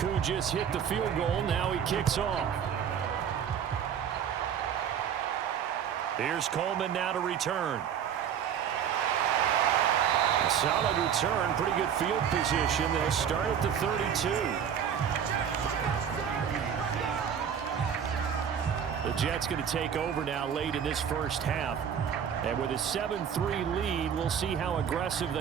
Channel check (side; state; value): left; quieter; 8.3 dB